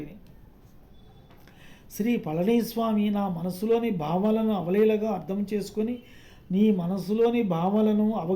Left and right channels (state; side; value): identical; both; correlation 1.00